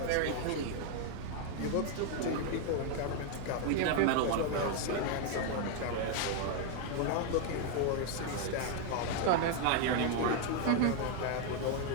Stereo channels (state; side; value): different; both; correlation 0.00